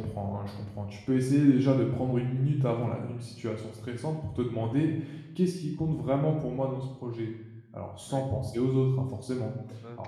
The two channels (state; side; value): identical; both; correlation 1.00